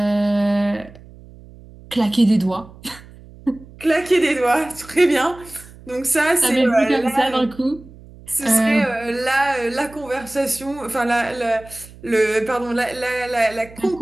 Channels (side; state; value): right; noise; hum, 21 dB below the sound